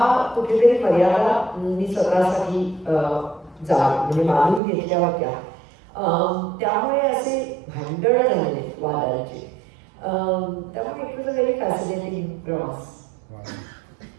कुठेतरी मर्यादा मी स्वतःसाठी म्हणजे मानून घेतल्या होत्या. त्यामुळे असे भांडण झाले वादाचे. त्यामुळे it was a very fascinating प्रवास.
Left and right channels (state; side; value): drops out; left; at 4.6 s